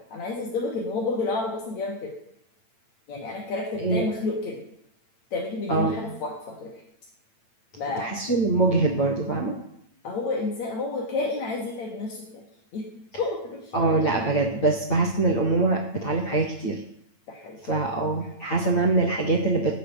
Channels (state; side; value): late; right; 8.9 ms